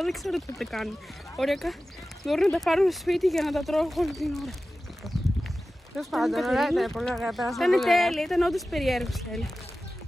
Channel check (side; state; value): both; normal; correlation 0.95